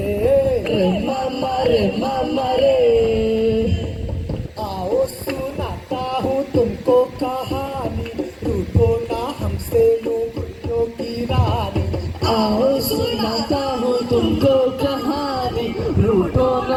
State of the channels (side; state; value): both; identical; correlation 1.00